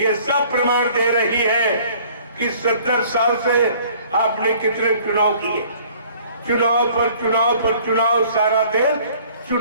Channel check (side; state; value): both; inverted; correlation -0.54